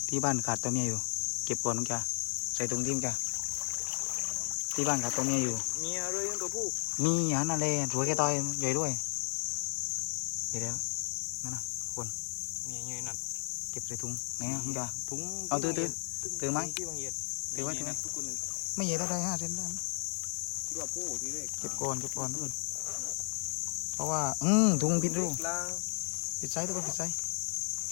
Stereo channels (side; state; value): right; silent; 55 dB below the other